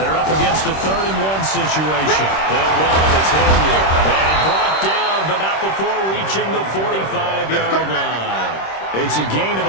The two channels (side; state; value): right; late; 26 ms